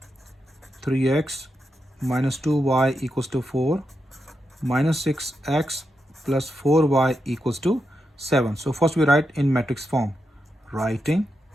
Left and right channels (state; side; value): normal; both; correlation 0.85